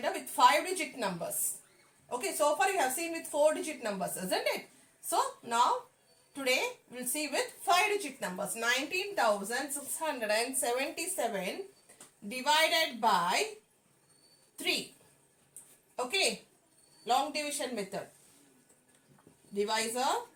with 5-digit numbers. Okay, so far you have seen with 4-digit numbers, isn't it? So now, today we'll see with 5-digit numbers. 19,677 divided by 3. Okay, long division method. Divisor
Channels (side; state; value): both; identical; correlation 1.00